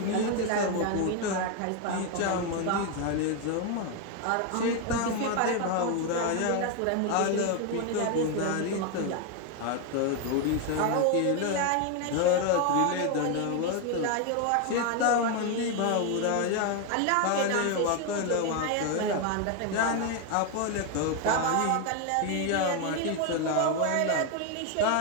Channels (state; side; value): different; both; correlation 0.01